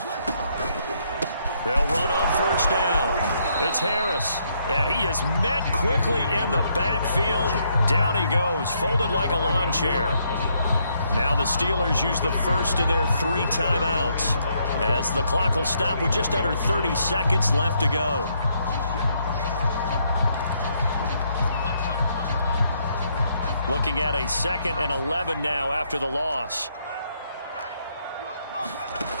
They'll run on first down. It's Harris. And he is met quickly in the backfield. Down he goes, folded like a lawn chair. Now the Steelers use the first of their 3 timeouts as the clock will stop with just under 30 seconds left to go. Looking at a 2nd and 11 now after the loss.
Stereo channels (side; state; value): both; inverted; correlation -0.73